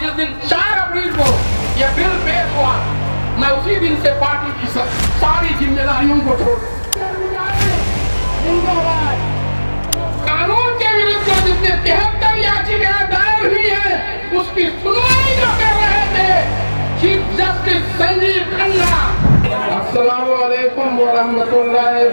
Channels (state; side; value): inverted; both; correlation -1.00